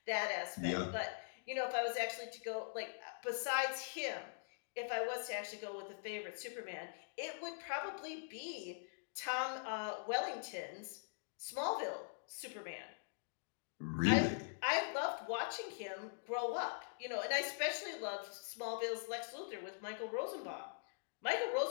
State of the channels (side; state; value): right; silent; digital silence